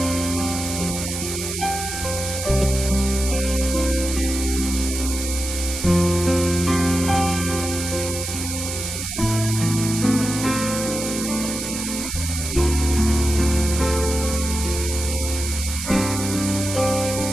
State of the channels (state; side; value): noise; right; hiss, 5 dB below the sound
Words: está nuestro corazón, a dónde está infilado nuestro corazón, hacia dónde está dirigido. Y todas estas cosas nos deben llevar a reflexionar en realidad cuál es la motivación de nuestro corazón y qué es lo que nosotros debemos hacer en el nombre poderoso de Yahshua.